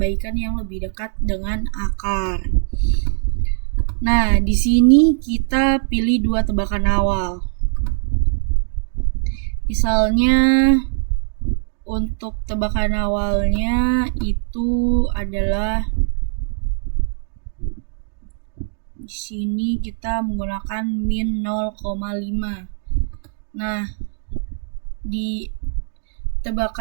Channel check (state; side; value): silent; left; digital silence